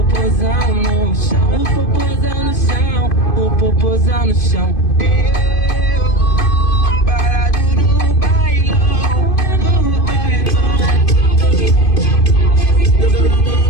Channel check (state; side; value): late; right; 2.5 ms